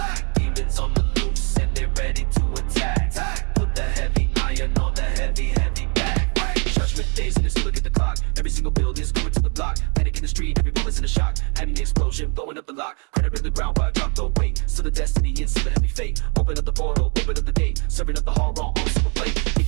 Demons on the loose and they're ready to attack. Put the heavy iron on the heavy back. Judgment days and it's look at the clock. Every single build is going to the block. Panic in the street, every bullet's in a shock. Having the explosion, blowing up the lock. Credit in the ground while I drop the weight. Still the destiny and still the heavy fate. Open up the portal, open up the gate. Serving up the horror on silver plate.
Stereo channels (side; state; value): left; quieter; 35.4 dB